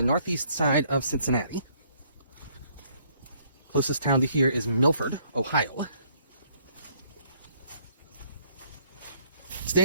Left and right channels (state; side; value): inverted; both; correlation -0.65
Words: northeast side of Cincinnati. Closest town to here is Milford, Ohio.